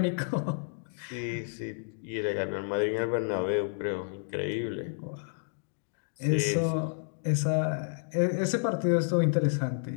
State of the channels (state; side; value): silent; right; digital silence